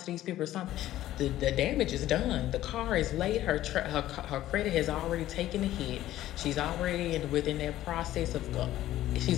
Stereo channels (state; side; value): quieter; right; 14.0 dB